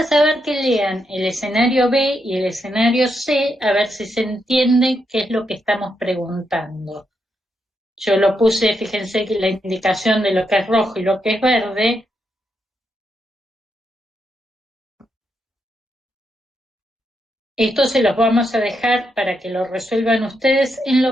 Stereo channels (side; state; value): both; normal; correlation 0.81